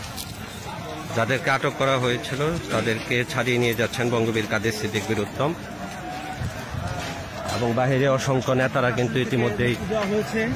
যাদেরকে আটক করা হয়েছিল তাদেরকে ছাড়িয়ে নিয়ে যাচ্ছেন বঙ্গবীর কাদের সিদ্দিক বীরুত্তম এবং বাহিরে অসংখ্য নেতারা কিন্তু ইতিমধ্যেই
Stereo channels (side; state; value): both; identical; correlation 1.00